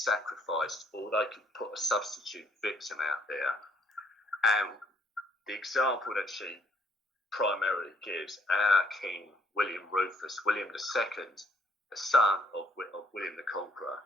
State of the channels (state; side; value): normal; both; correlation 0.66